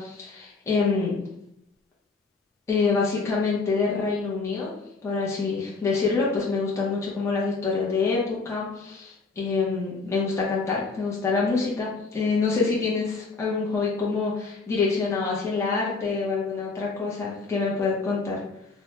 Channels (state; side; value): quieter; right; 4.1 dB